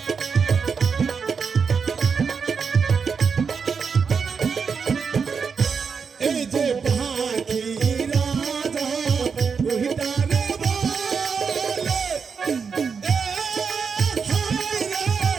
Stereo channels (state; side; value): quieter; left; 5.8 dB